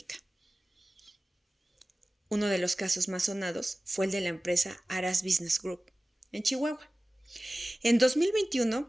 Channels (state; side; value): normal; both; correlation 0.96